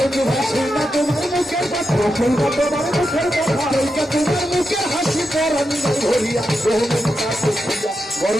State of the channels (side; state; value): both; normal; correlation 0.87